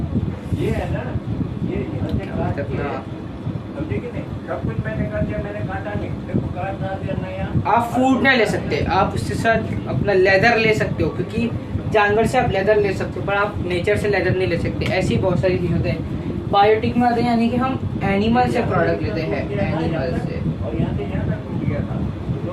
ये है ना, ये अपना आप फूड नहीं ले सकते, आप उसके साथ अपना लेदर ले सकते हो, क्योंकि जानवर से आप लेदर ले सकते हो पर आप नेचर से लेदर नहीं ले सकते। ऐसी बहुत सारी चीज़ होते हैं। बायोटिक में आते हैं, यानी कि हम एनिमल से प्रोडक्ट लेते हैं, एनिमल से।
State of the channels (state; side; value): identical; both; correlation 1.00